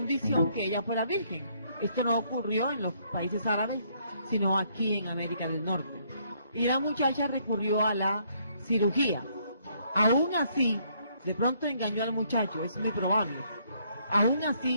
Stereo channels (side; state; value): both; inverted; correlation -0.68